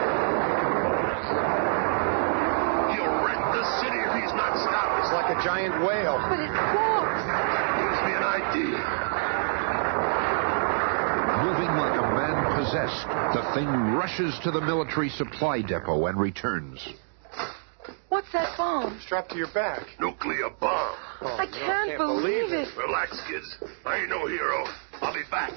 He'll wreck the city if he's not stopped. It's like a giant whale. But it walks. Gives me an idea. Moving like a man possessed, the thing rushes to the military supply depot and returns. What's that bomb? Strapped to your back. Nuclear bomb. Oh, I can't believe it. Relax, kids. I ain't no hero. I'll be back.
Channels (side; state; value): left; silent; digital silence